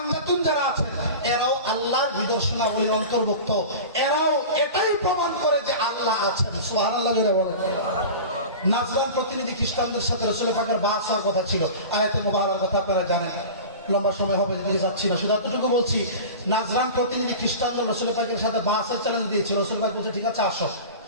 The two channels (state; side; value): inverted; both; correlation -0.34